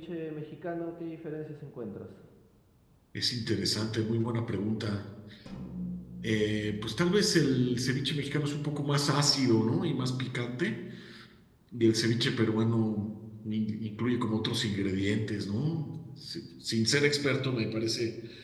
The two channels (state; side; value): identical; both; correlation 1.00